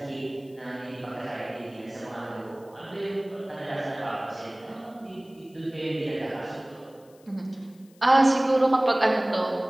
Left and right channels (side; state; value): left; noise; hiss, 30 dB below the sound